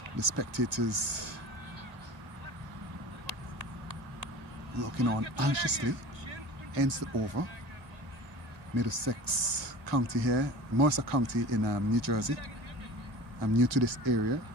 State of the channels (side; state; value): left; late; 1.9 ms